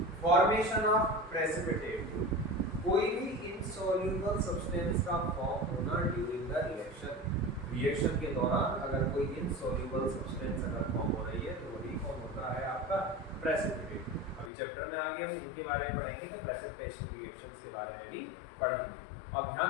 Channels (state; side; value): drops out; right; at 14.5 s